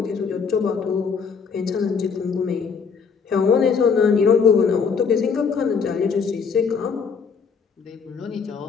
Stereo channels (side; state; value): right; quieter; 5.8 dB